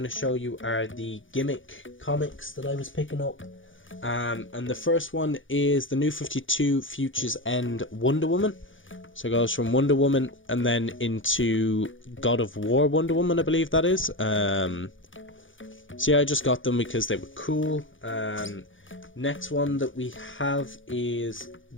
to show you are the Gimmick Comics that I was picking up. And the first one is the New 52 Futures End Wonder Woman. So it goes from Wonder Woman and then into God of War Wonder Woman, I believe that is. So yeah, I just got them because they were cool. Next one that we have is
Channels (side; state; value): right; late; 0.57 ms